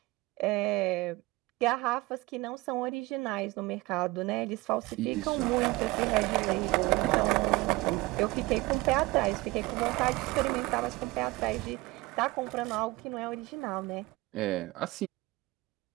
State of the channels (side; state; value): left; quieter; 21.4 dB